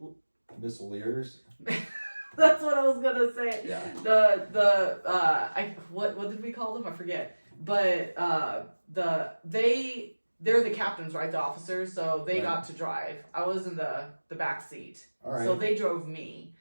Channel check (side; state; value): both; inverted; correlation -1.00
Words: That's what I was gonna say. Yeah. What did we call them? I forget. But they're the captains, right? The officers. So they got to drive. I was in the back seat. All right. So they drove me.